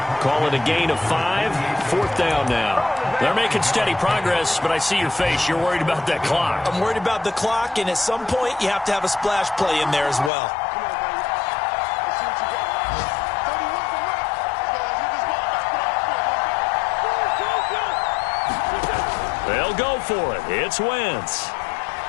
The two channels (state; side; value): drops out; right; at 10.3 s